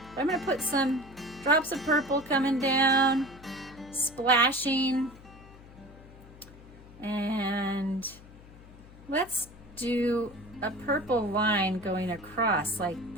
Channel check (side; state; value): left; noise; hum, 20 dB below the sound